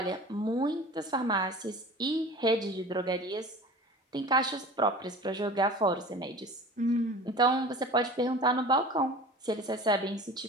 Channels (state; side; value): normal; both; correlation 0.39